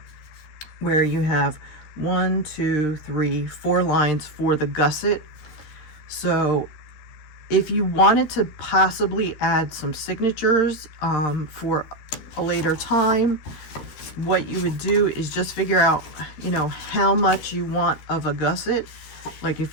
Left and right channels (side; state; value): right; late; 13 ms